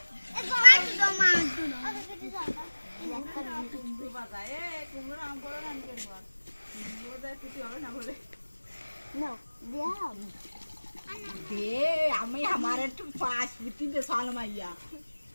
একটু মার দাও মার দাও আগে কেটে যাও কুমড়ো বাজায় এ কুমড়ো আম করে রান করব কুমড়ো দেয় কিছু হবে না বলে নাও দাও দে আমি আমার একটু পাঁচ বিটি দে সাল মাইয়া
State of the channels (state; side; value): inverted; both; correlation -1.00